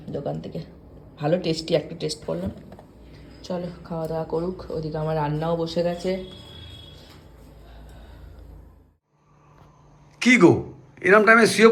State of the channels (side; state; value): both; identical; correlation 1.00